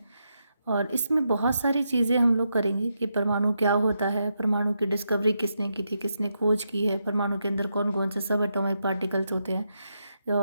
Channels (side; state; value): both; inverted; correlation -0.83